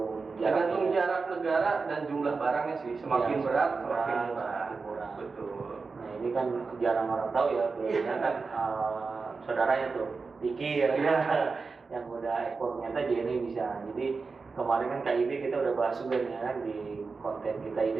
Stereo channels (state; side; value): quieter; left; 4.4 dB